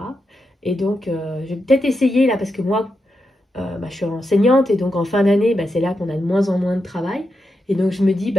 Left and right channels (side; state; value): both; normal; correlation 0.86